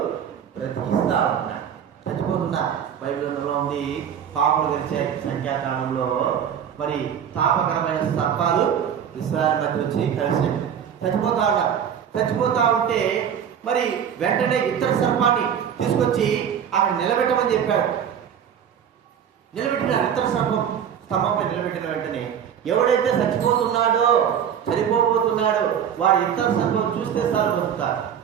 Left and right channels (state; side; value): quieter; left; 8.6 dB